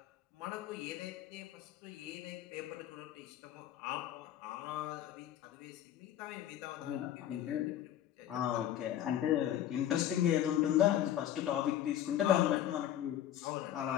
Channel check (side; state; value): right; quieter; 11.6 dB